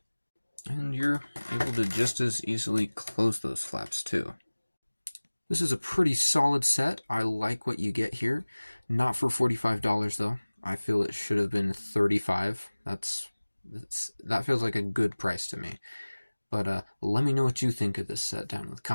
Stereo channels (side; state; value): both; inverted; correlation -1.00